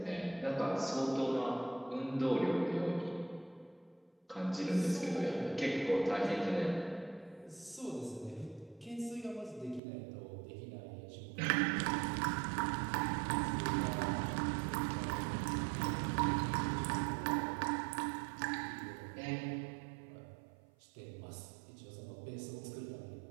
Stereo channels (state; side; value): drops out; left; at 9.8 s